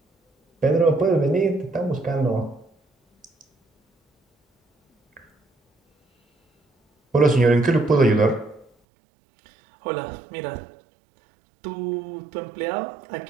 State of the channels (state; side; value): drops out; left; at 8.7 s